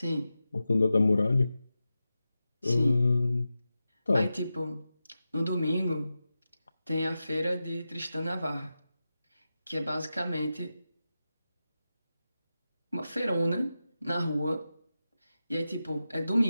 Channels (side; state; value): both; inverted; correlation -0.92